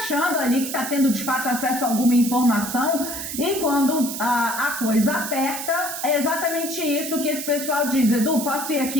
ali que está tendo de fato acesso a alguma informação, e quando a coisa aperta, é exatamente isso que esse pessoal diz. Edu, posso ir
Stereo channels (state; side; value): noise; right; hiss, 6 dB below the sound